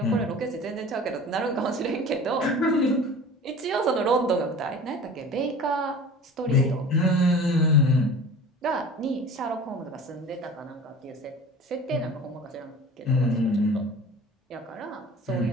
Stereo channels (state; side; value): normal; both; correlation 0.40